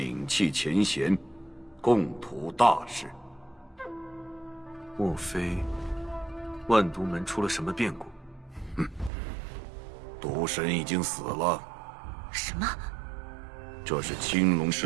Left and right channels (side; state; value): left; drops out; at 9.1 s